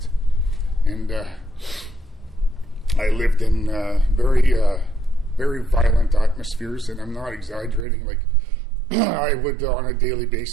And I lived in very, very violent atmospheres, and I'm not exaggerating. Like, I would, on a daily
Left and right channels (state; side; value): drops out; left; at 7.9 s